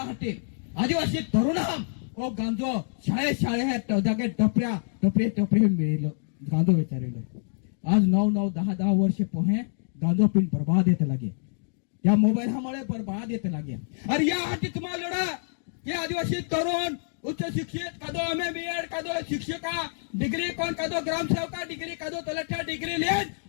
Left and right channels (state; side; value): silent; right; digital silence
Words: हटे आदिवासी तरुणा ओ गांजो शाळे है जागे टपरे मिळेलो गांजो विचारेलो. आज 9-10 वर्ष पोहे गांजो पिन बर्बाद येते लागे या मोबाईल हमारे बर्बाद येते लागे. अरे यासाठी तुम्हाला लढा की आदिवासी तरुण उच्च शिक्षित कादो MA कादो शिक्षका डिग्री कोण कादो ग्रामसेवका डिग्री कादो तलाठ्या डिग्री लेन